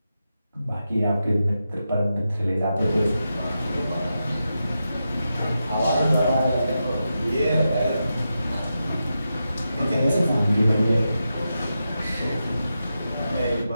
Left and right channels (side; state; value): both; inverted; correlation -0.89